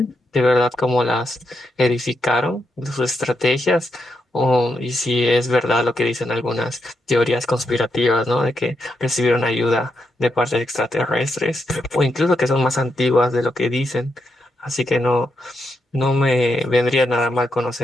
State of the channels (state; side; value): normal; both; correlation 0.82